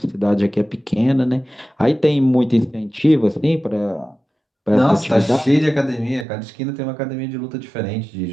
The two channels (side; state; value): left; drops out; at 6.2 s